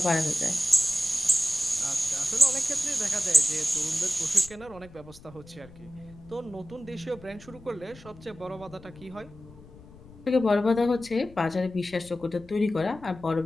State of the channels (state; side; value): noise; left; rumble, 21 dB below the sound